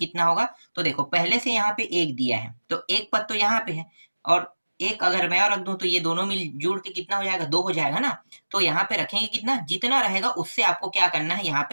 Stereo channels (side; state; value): both; inverted; correlation -1.00